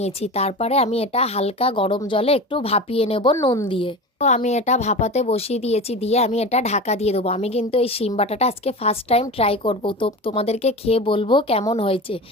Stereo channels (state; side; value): normal; both; correlation 0.30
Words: তারপরে আমি এটা হালকা গরম জলে একটু ভাপিয়ে নেব নুন দিয়ে। তো আমি এটা ভাপাতে বসিয়ে দিয়েছি, দিয়ে আমি এটা ঢাকা দিয়ে দেবো। আমি কিন্তু এই শিম বাটাটা আজকে ফার্স্ট টাইম ট্রাই করব, তো তোমাদেরকে খেয়ে বলবো কেমন হয়েছে।